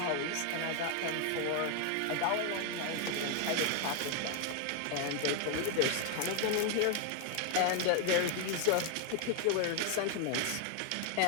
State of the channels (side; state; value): both; different; correlation 0.01